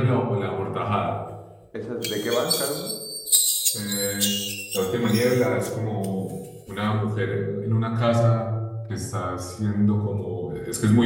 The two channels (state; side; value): identical; both; correlation 1.00